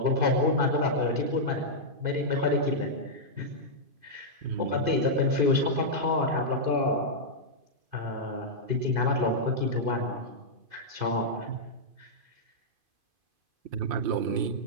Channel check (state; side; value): late; left; 2.5 ms